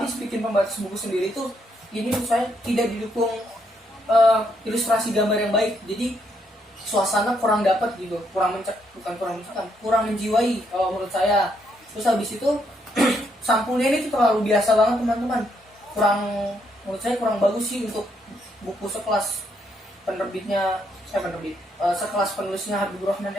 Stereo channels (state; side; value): normal; both; correlation 0.75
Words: pembatas buku sendiri tuh ini menurut saya tidak didukung ilustrasi gambar yang baik, jadi suasana kurang dapat gitu, kurang menjiwai kalau menurut saya. Terus habis itu sampulnya ini tuh terlalu biasa banget teman-teman, menurut saya kurang bagus sih untuk buku sekelas sekelas penulisnya Habibur Rahman